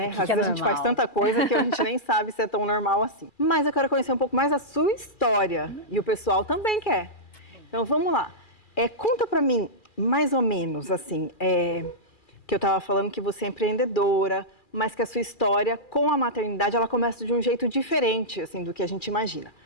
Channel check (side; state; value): right; late; 2.4 ms